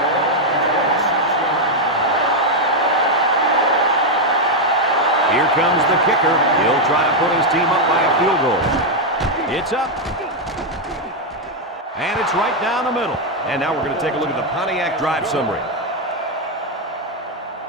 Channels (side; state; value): both; normal; correlation 0.01